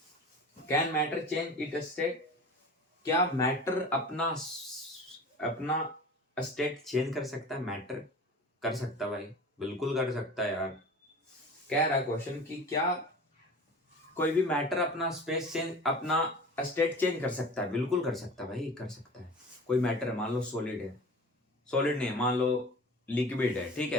Can matter change it state, क्या मैटर अपना अपना स्टेट चेंज कर सकता है, मैटर कर सकता है भाई, बिल्कुल कर सकता है यार। कह रहा है क्वेश्चन कि क्या कोई भी मैटर अपना स्पेस चेंज, अपना स्टेट चेंज कर सकता है, बिल्कुल कर सकता है भाई, कर सकता है। कोई मैटर है, मान लो सॉलिड है, सॉलिड नहीं है, मान लो लिक्विड है, ठीक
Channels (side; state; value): both; normal; correlation 0.37